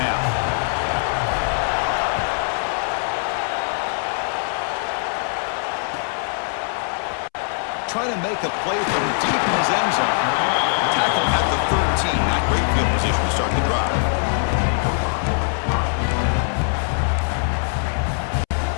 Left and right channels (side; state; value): right; silent; 64 dB below the other